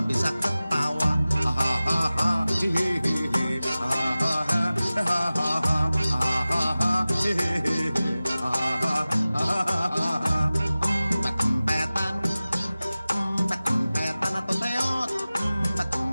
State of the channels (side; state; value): both; inverted; correlation -0.97